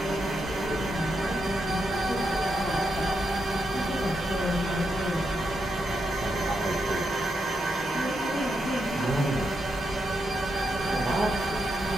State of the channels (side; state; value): both; normal; correlation 0.82